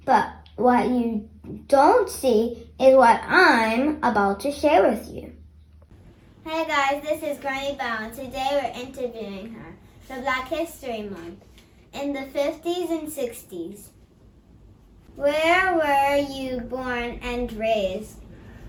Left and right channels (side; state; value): both; identical; correlation 1.00